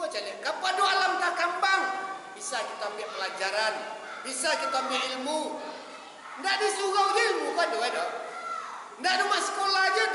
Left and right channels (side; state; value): both; identical; correlation 1.00